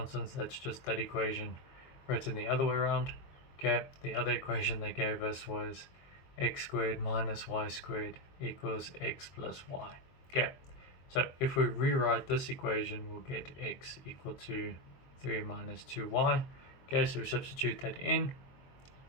That's just that equation written the other way around. Okay, the other equation they gave us was x squared minus y squared equals x plus y. Okay, so if we rewrite this equation, we'll get x equal to 3 minus 2y. Okay, so we substitute that in.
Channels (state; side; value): late; right; 23 ms